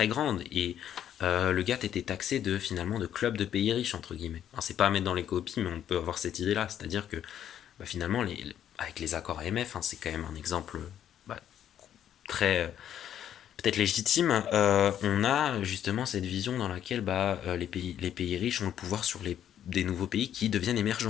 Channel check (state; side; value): quieter; right; 10.2 dB